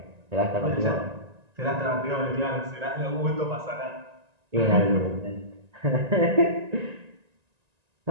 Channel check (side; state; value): left; late; 1.9 ms